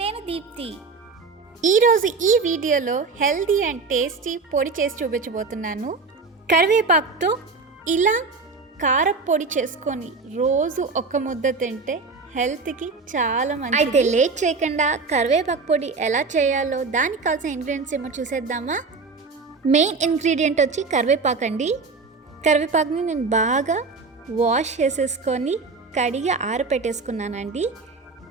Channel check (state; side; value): quieter; left; 4.3 dB